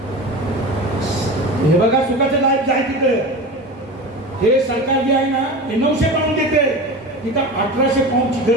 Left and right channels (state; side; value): normal; both; correlation 0.29